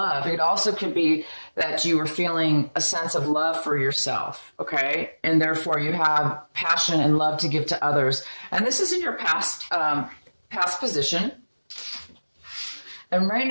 It also could be that you were feeling a sense of love for yourself, okay? And therefore you have passion and love to give to others. And this is in your past position. And right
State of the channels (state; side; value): inverted; both; correlation -1.00